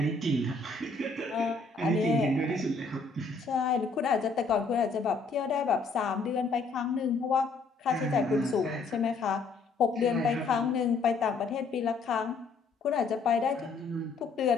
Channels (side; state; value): right; quieter; 4.0 dB